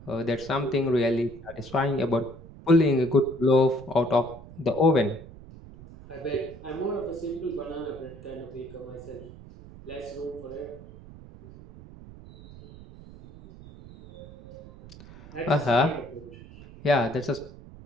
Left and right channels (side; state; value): right; noise; rumble, 17 dB below the sound